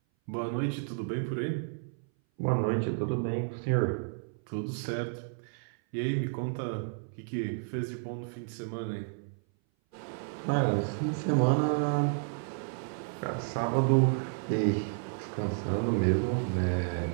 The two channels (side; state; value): left; silent; 57 dB below the other